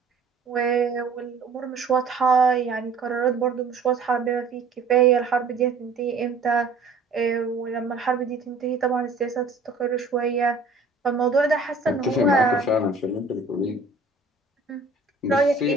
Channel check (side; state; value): left; quieter; 3.9 dB